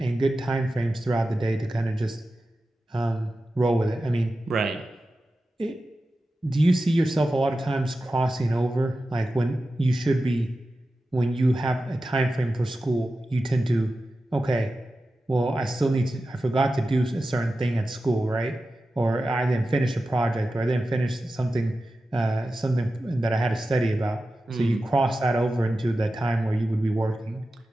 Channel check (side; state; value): both; normal; correlation 0.93